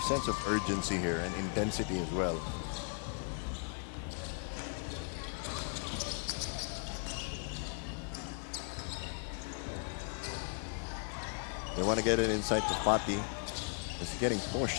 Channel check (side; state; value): right; silent; 53 dB below the other